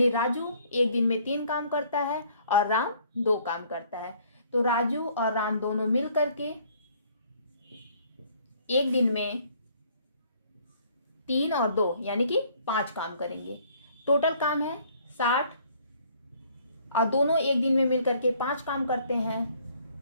राजू एक दिन में 3 काम करता है और राम 2 काम करता है। तो राजू और राम दोनों मिल करके एक दिन में 3 और 2 यानी कि 5 काम करेंगे। टोटल काम है 60, और दोनों एक दिन में मिलकर के 5 काम करते हैं,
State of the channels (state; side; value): inverted; both; correlation -0.60